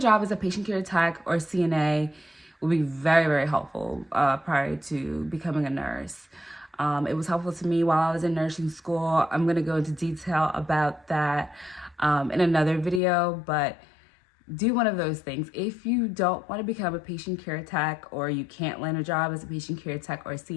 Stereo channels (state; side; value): drops out; right; at 13.0 s